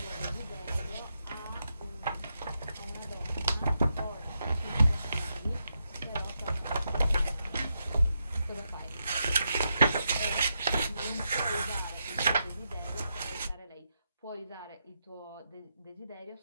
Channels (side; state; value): both; inverted; correlation -0.84